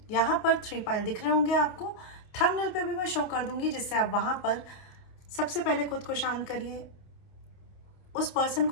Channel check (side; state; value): right; late; 28 ms